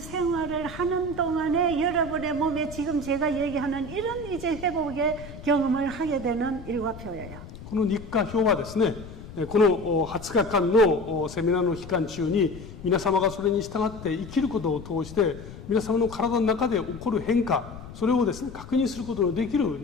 하는 동안에 여러분의 몸에 지금 제가 얘기하는 이런 이제 회복의 경험을 하게 되는 일과표예요. この日課表はですね、この20日間のセミナーの期間中に皆様がそれに従って生きることを通して皆様の体の中で起こる変化、それをですね確認することのできる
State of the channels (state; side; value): noise; left; rumble, 14 dB below the sound